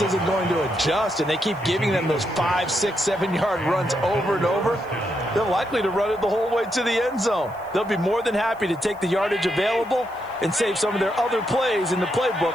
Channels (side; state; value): left; noise; hiss, 29 dB below the sound